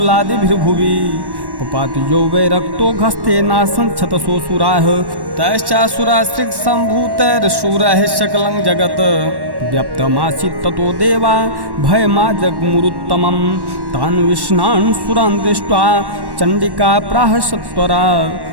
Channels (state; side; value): late; left; 1.1 ms